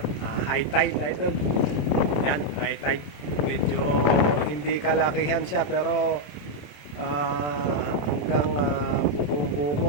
high tide idol. Yan, high tide. Medyo hindi kalakihan siya pero hanggang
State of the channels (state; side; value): late; right; 27 ms